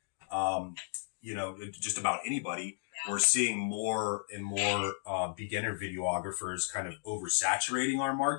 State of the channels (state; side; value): silent; right; digital silence